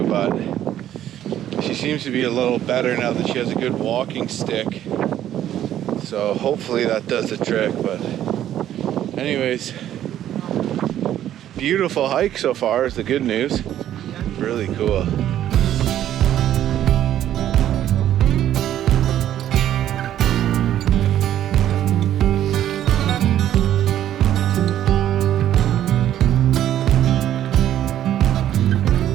but she seems to be a little better now that she has a good walking stick. So hopefully that does the trick. But anyways, beautiful hike so far is the good news. Really cool.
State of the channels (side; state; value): left; quieter; 11.6 dB